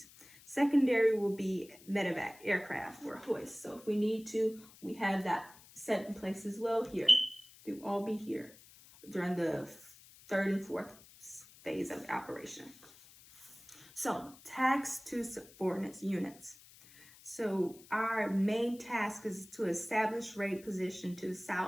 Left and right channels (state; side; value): noise; left; hiss, 22 dB below the sound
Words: Secondary will be medevac, aircraft or hoist. So if we need to, we have that set in place as well here. They will all be here during the 3rd and 4th phase of the operation. So, tasks to subordinate units. So, our main task is to establish raid position to the